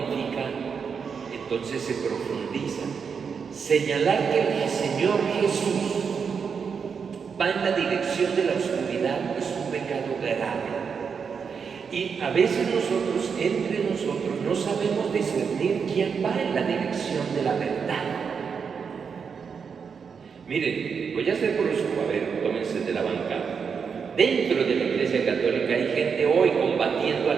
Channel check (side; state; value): left; quieter; 6.2 dB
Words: entonces se profundiza. Señalar que el Señor Jesús va en la dirección de la oscuridad es un pecado grave. Y a veces nosotros, entre nosotros, no sabemos discernir quién va en la dirección de la verdad. Miren, voy a ser brusco, a ver, tómense de la bancada. Dentro de la Iglesia Católica hay gente hoy combatiendo